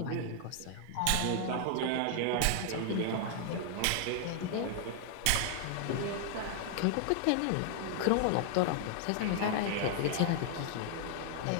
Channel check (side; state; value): both; different; correlation 0.00